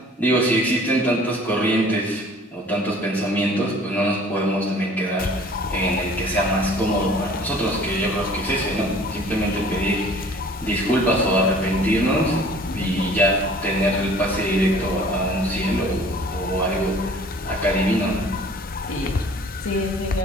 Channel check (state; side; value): normal; both; correlation 0.51